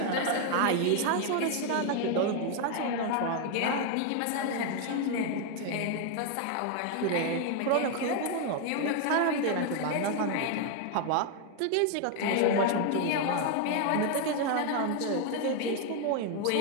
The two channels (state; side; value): different; both; correlation 0.01